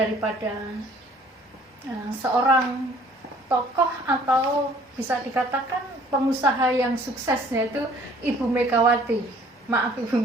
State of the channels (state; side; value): normal; both; correlation 0.56